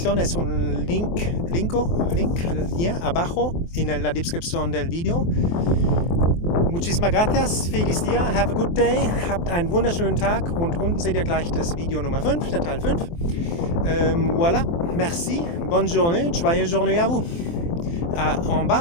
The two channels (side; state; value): right; late; 24 ms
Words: es un link abajo en la descripción del video. Muchísimas gracias, feliz día, have a good day, habt einen wunderschönen Tag und unten seht ihr gleich das Video Nummer 5, der Teil 5. Voilà, merci, bonne journée, joyeuse journée à vous. En